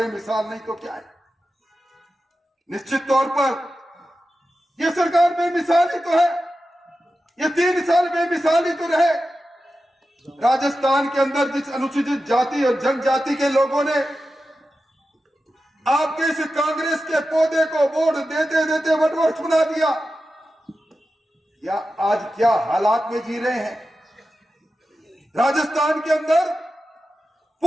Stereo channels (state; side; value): normal; both; correlation 0.92